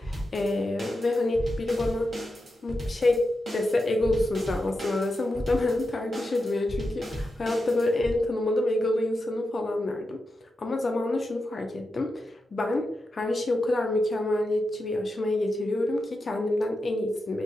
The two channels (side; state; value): both; normal; correlation 0.89